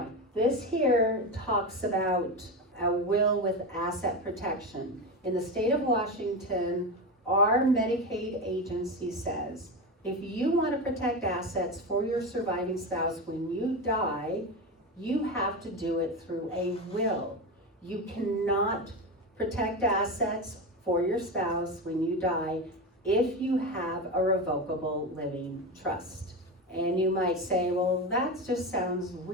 this here talks about a will with asset protection. In the state of Washington, our Medicaid agency says, if you want to protect assets for your surviving spouse when you die, you have to do it through a will. You cannot protect assets for your spouse when you die if you have a revocable living trust. And you might say, well, that just sounds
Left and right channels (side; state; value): both; normal; correlation 0.19